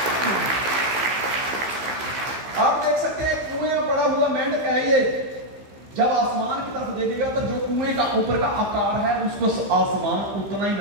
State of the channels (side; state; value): left; late; 15 ms